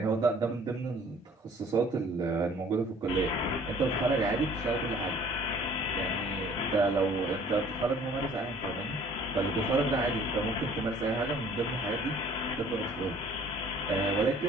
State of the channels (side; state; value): both; normal; correlation 0.54